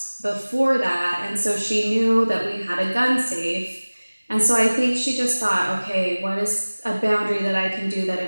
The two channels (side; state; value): both; inverted; correlation -1.00